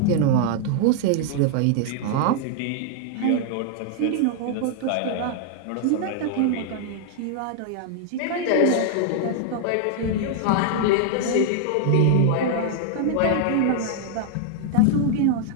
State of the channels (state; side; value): different; both; correlation 0.00